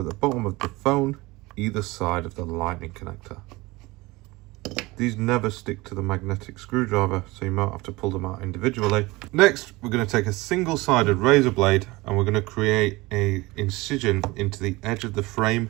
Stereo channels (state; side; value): quieter; left; 21.8 dB